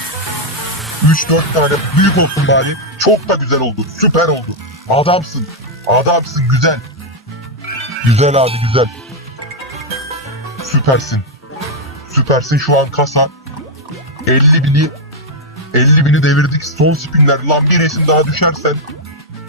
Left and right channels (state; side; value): normal; both; correlation -0.01